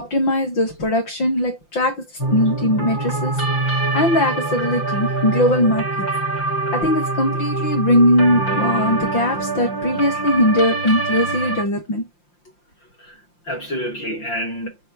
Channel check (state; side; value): late; right; 5.8 ms